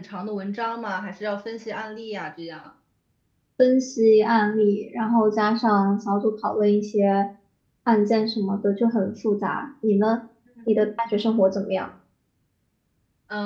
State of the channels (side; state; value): both; identical; correlation 1.00